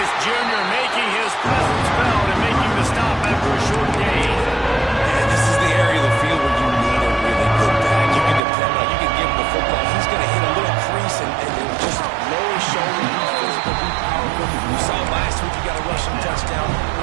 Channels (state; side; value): drops out; left; at 8.4 s